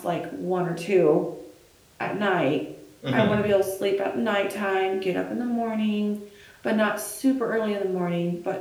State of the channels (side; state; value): both; identical; correlation 1.00